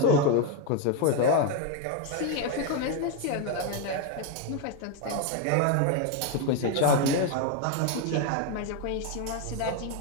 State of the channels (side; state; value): both; different; correlation 0.01